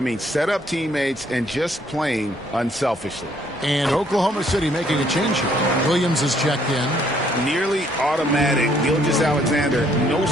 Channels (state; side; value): normal; both; correlation 0.66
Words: mean, set up teammates and just playing unselfishly. And Oklahoma City making a change here. Williams is checked in. Nearly automatic. Gilgeous-Alexander, no